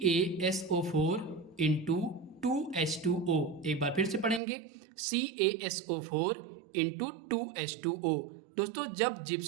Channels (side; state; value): left; drops out; at 4.4 s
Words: into 2H2O। एक बार फिर से पढ़ेंगे, CaSO4 इंटू 2H2O। दोस्तों जब